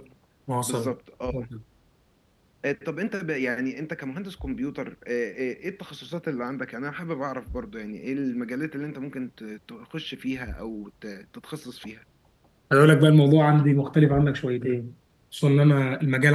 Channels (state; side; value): identical; both; correlation 1.00